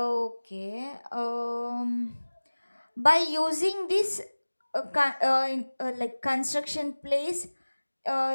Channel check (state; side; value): inverted; both; correlation -1.00